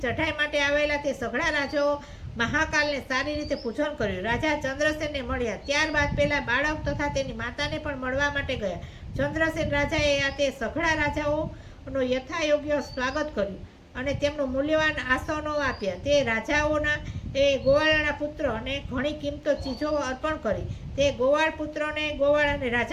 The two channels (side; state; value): both; identical; correlation 1.00